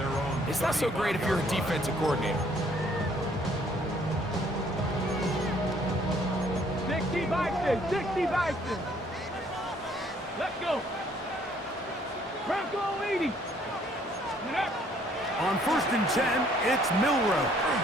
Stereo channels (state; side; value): normal; both; correlation 0.63